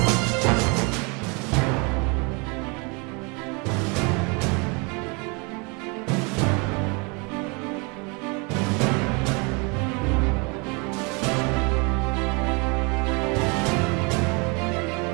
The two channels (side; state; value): left; quieter; 30.9 dB